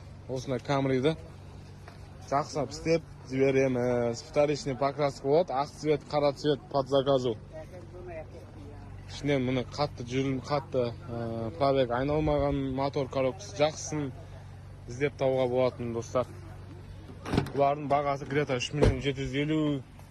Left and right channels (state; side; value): identical; both; correlation 1.00